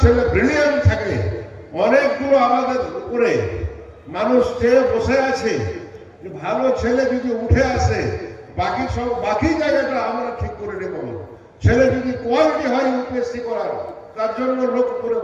ছেলে ব্রিলিয়ান্ট থাকে, অনেকগুলো আমাদের উপরে মানুষ চেয়ে বসে আছে, ভালো ছেলে যদি উঠে আসে, বাকি জায়গাটা আমরা ঠিক করে নেব। ছেলে যদি কোয়ালিটি হয় ইউপিএসসি করার, তার জন্য লোক উপরে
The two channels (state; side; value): identical; both; correlation 1.00